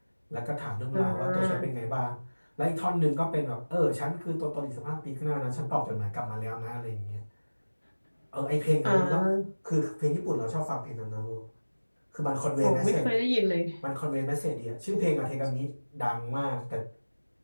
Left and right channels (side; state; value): both; inverted; correlation -1.00